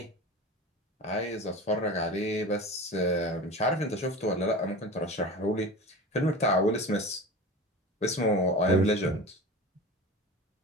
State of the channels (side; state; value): both; normal; correlation 0.33